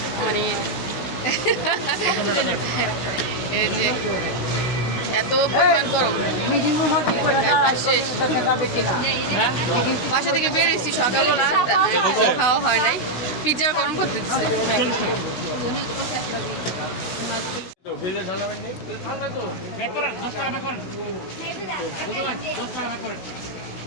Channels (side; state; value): right; late; 16 ms